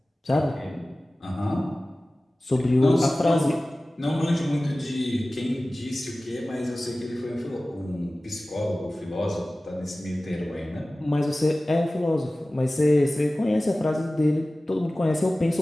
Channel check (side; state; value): both; normal; correlation 0.97